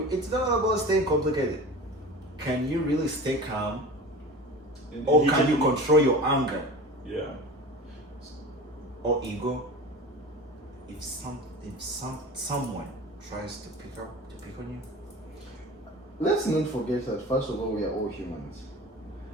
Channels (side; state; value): both; normal; correlation 0.35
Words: It's not all about staying complicated. Can you really stay calm? Or can you control your anger Yeah. or ego? If someone tries to pick on you, Let's not forget that first of all we are all humans.